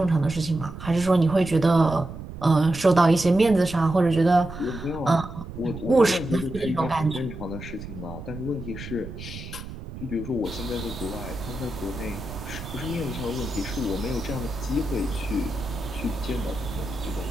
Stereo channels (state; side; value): noise; right; rumble, 11 dB below the sound